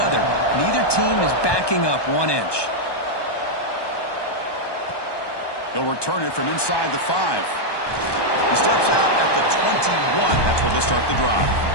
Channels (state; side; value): late; right; 1.2 ms